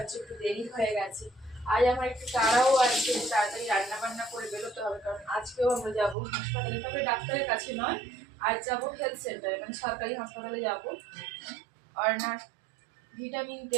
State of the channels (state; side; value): drops out; left; at 6.2 s